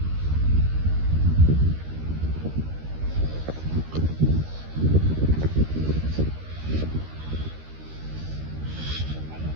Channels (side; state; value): left; late; 13 ms